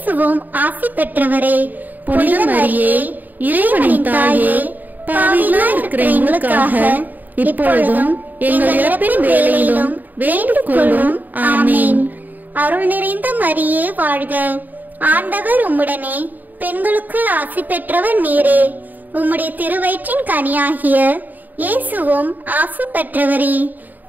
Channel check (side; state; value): left; late; 0.085 ms